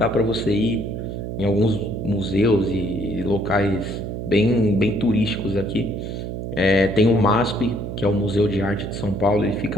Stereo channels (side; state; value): right; noise; hum, 6 dB below the sound